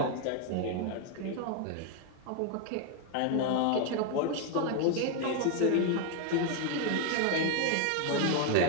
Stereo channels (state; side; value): different; both; correlation 0.00